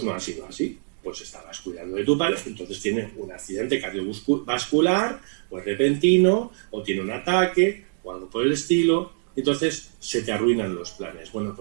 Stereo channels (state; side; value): silent; left; 62 dB below the other